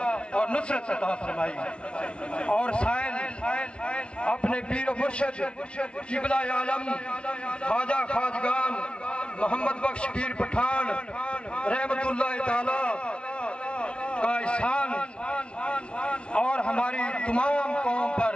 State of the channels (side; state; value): right; late; 0.058 ms